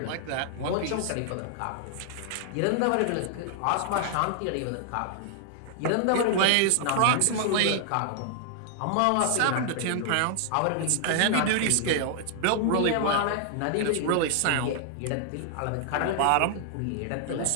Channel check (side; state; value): both; different; correlation 0.00